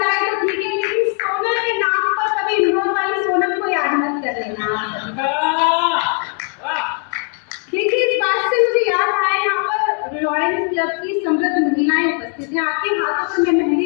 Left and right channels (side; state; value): right; quieter; 37.0 dB